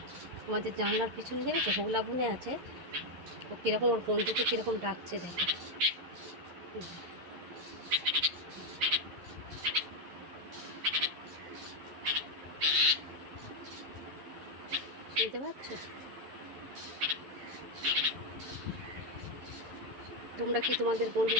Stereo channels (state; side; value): late; left; 11 ms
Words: আমাদের জানলার পিছনে দেখেছো, হোগলা বুনে আছে। ও কীরকম ওর বন্ধুকে কীরকম ডাকছে দেখো। শুনতে পাচ্ছ? তোমরা কি তোমাদের